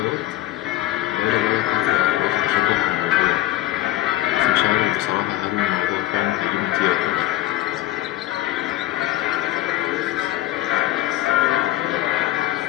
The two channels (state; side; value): quieter; right; 15.4 dB